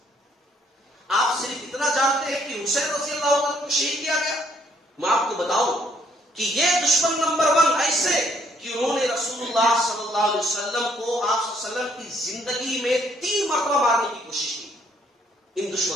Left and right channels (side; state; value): both; normal; correlation 0.67